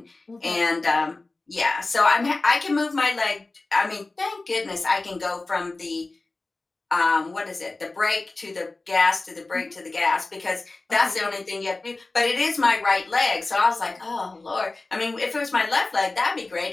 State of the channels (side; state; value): right; quieter; 3.3 dB